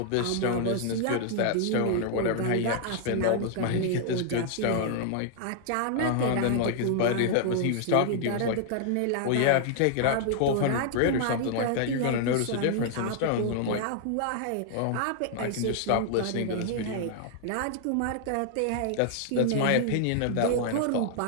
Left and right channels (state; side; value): different; both; correlation 0.00